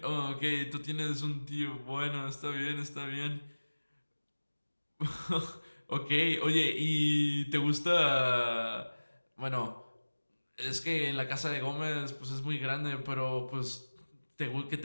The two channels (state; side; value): inverted; both; correlation -1.00